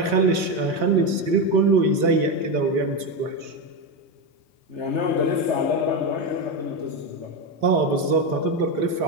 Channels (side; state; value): left; late; 3.8 ms